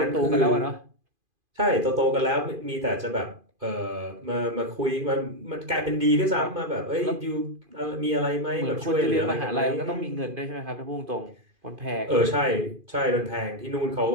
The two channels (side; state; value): left; late; 2.5 ms